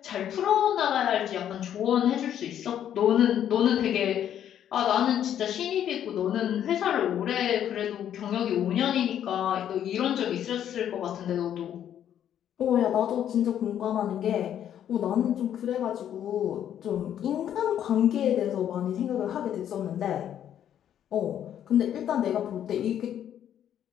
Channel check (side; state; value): right; quieter; 10.1 dB